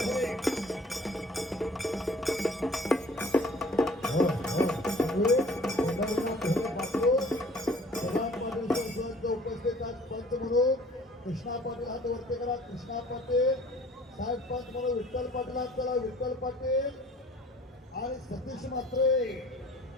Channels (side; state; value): both; normal; correlation 0.51